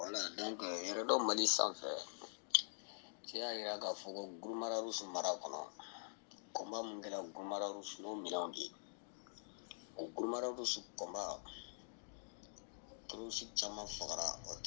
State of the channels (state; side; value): silent; right; digital silence